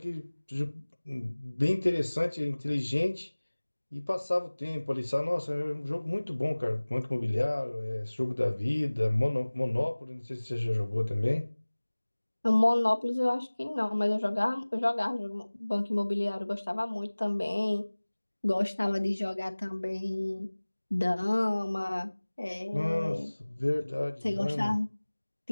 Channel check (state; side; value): inverted; both; correlation -1.00